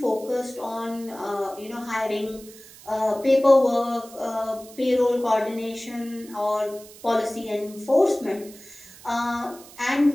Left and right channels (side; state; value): right; noise; hiss, 20 dB below the sound